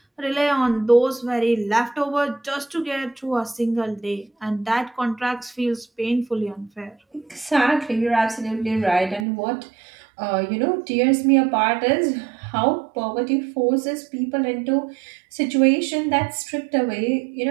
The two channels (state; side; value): drops out; left; at 9.2 s